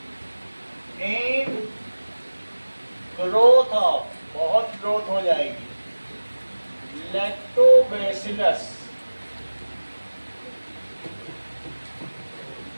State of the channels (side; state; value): both; inverted; correlation -1.00